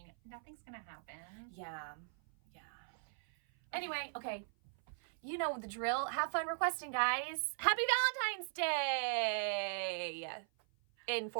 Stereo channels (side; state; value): left; silent; 52 dB below the other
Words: nothing's gonna happen. Yeah. Anyway, okay. You know the drill. Have fun requesting, guys. Happy Valentine's Day! In